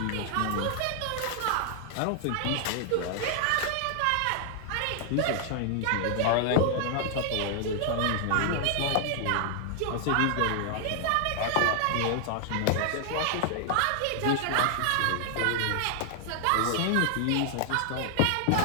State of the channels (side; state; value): both; different; correlation 0.00